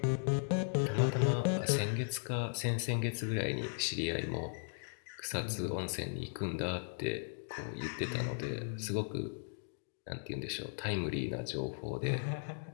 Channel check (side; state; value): right; silent; digital silence